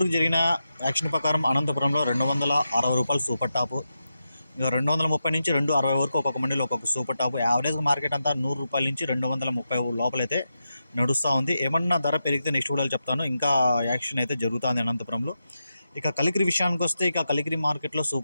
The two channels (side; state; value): both; inverted; correlation -0.88